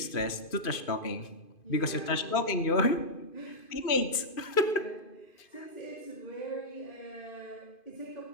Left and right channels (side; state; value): right; late; 2.5 ms